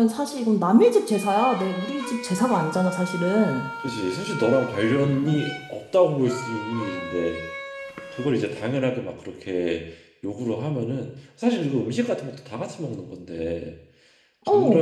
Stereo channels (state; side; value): identical; both; correlation 1.00